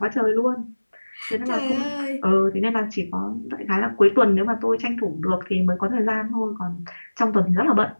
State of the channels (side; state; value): both; inverted; correlation -1.00